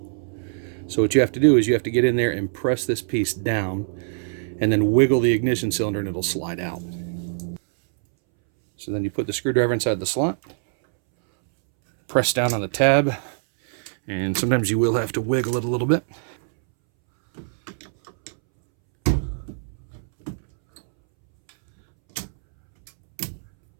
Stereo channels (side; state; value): left; silent; 63 dB below the other